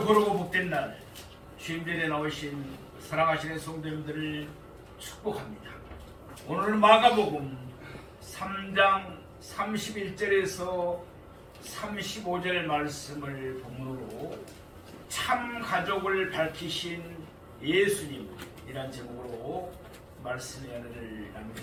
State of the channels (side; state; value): both; identical; correlation 1.00